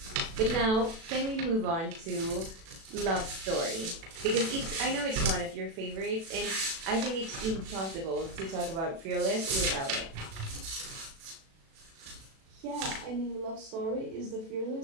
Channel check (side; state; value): left; late; 36 ms